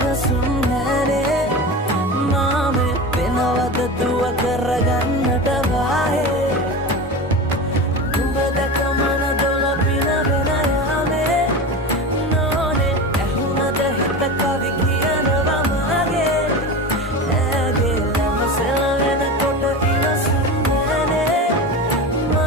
නැනේ මාමේ වෙනවද දුව කරගන්නට වාහේ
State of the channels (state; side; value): normal; both; correlation 0.27